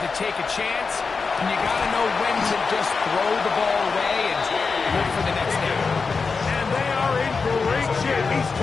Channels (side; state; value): right; quieter; 4.8 dB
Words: to take a chance, and you got to know when to just throw the ball away and look for the next down. And they are in great shape. He's